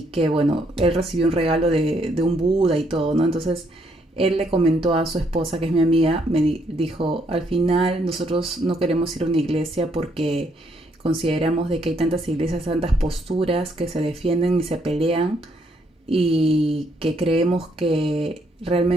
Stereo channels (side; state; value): both; normal; correlation 0.72